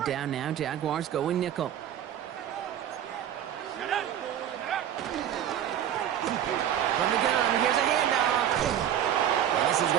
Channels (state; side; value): quieter; left; 10.4 dB